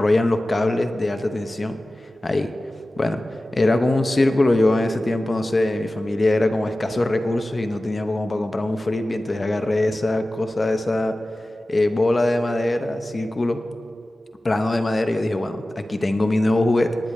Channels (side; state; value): both; normal; correlation 0.96